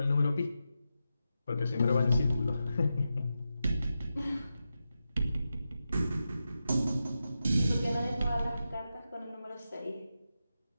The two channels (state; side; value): inverted; both; correlation -0.89